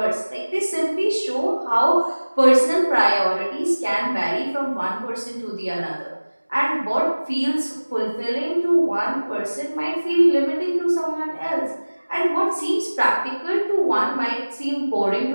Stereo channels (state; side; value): inverted; both; correlation -1.00